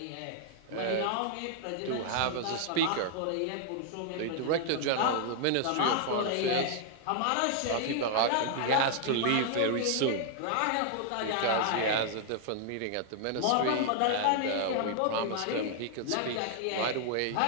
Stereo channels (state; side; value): different; both; correlation 0.00